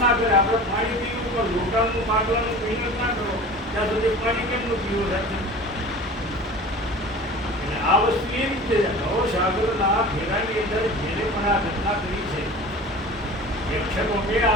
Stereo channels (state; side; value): normal; both; correlation 0.38